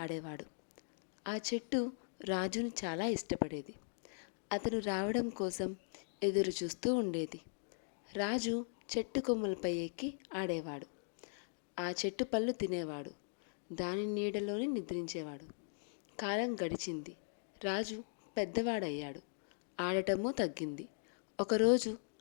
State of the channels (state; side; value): silent; right; digital silence